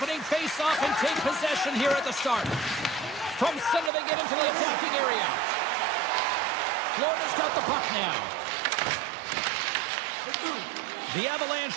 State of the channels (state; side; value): drops out; left; at 3.9 s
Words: face-off and take possession here at the start. From center they get into the attacking area. Florida's got the puck now. The Avalanche